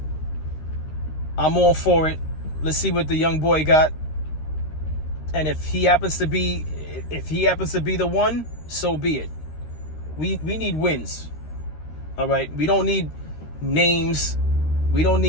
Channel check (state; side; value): late; right; 13 ms